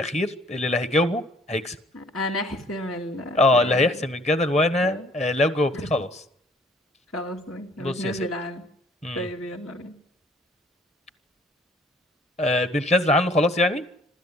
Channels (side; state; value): both; normal; correlation 0.58